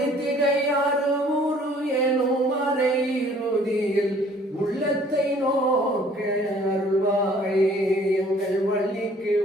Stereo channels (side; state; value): both; normal; correlation 0.56